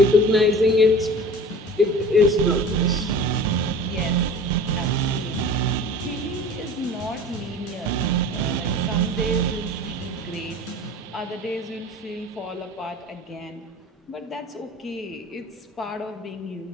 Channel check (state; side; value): normal; both; correlation 0.41